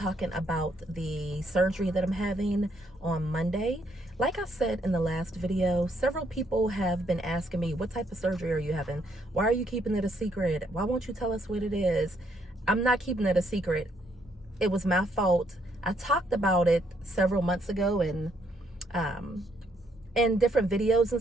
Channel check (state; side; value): normal; both; correlation 0.72